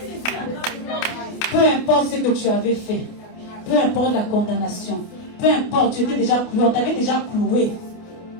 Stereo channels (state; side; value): late; right; 28 ms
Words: Peu importe ce que tu avais fait, peu importe la condamnation, peu importe, tu étais déjà cloué, on t'avait déjà cloué.